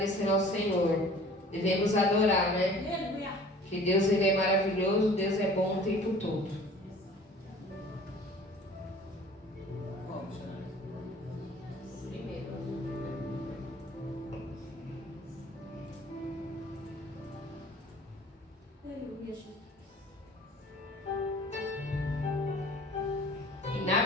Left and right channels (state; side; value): normal; both; correlation 0.48